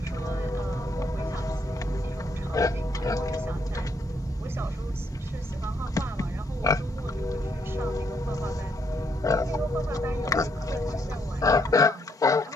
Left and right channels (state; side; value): normal; both; correlation 0.73